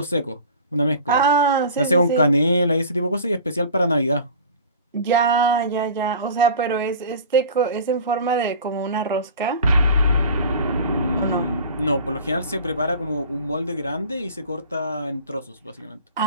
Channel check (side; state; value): both; inverted; correlation -0.40